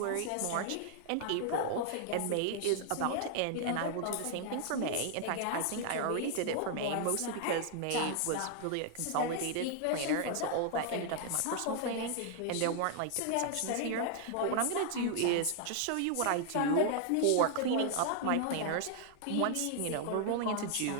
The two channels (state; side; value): different; both; correlation 0.00